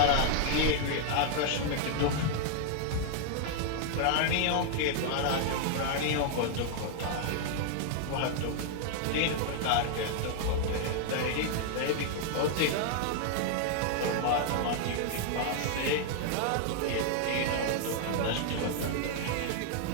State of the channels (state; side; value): different; both; correlation 0.00